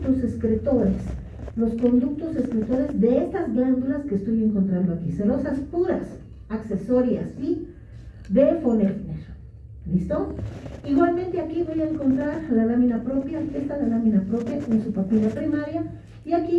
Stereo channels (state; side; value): identical; both; correlation 1.00